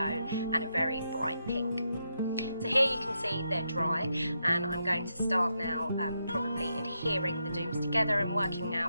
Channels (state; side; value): inverted; both; correlation -0.83